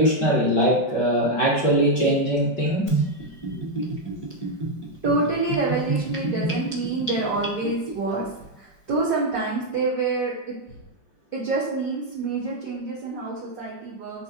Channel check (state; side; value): late; right; 4.8 ms